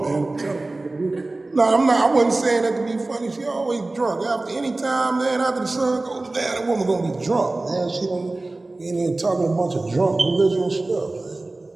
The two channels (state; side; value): quieter; left; 3.0 dB